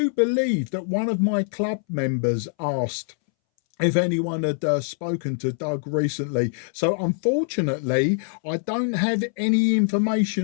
believe that one of my club members asked if anyone had spoken to Doug recently. So unfortunately, I don't have any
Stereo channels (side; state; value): right; silent; 63 dB below the other